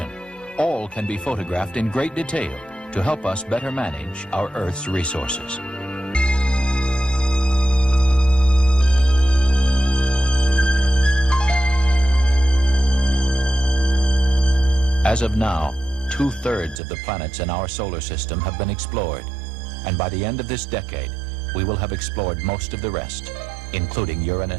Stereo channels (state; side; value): drops out; left; at 16.8 s